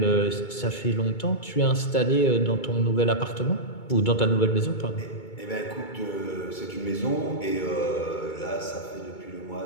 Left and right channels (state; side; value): late; right; 2.2 ms